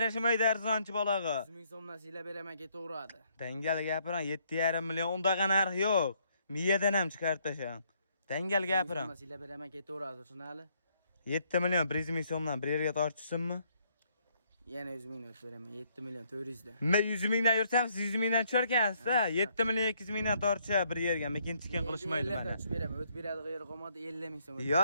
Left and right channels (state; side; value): inverted; both; correlation -0.69